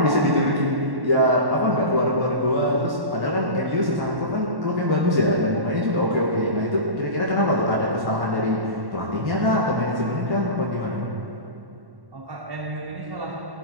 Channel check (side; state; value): left; late; 1.1 ms